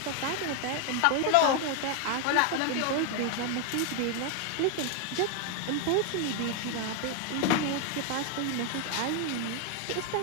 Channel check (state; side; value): different; both; correlation 0.01